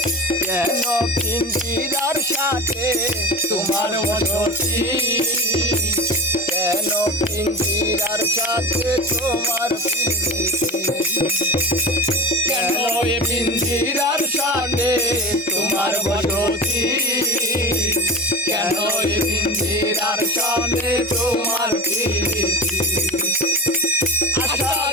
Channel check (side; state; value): both; normal; correlation 0.29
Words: কেন পিঞ্জিরার সাথে তোমার বসতি কেন পিঞ্জিরার সাথে তোমার প্রীতি কেন এ পিঞ্জিরার সাথে তোমার বসতি কেন এ পিঞ্জিরার সাথে তোমার প্রীতি আসা